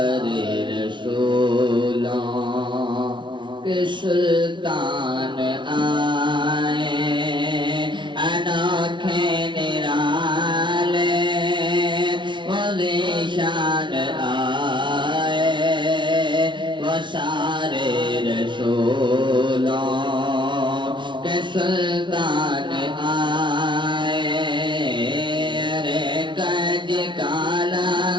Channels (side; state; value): left; late; 0.24 ms